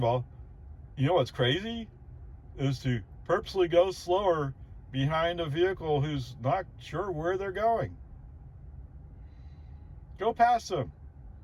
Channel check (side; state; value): both; identical; correlation 1.00